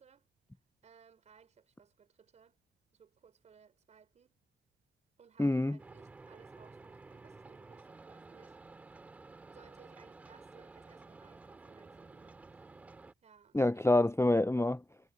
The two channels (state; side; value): normal; both; correlation 0.92